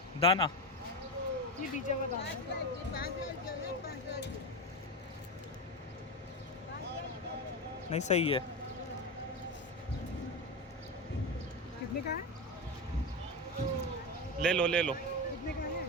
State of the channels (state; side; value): normal; both; correlation 0.18